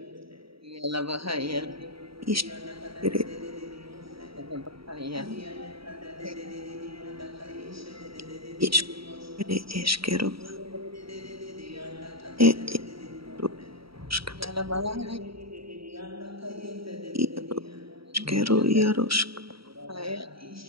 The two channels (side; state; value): left; late; 0.75 ms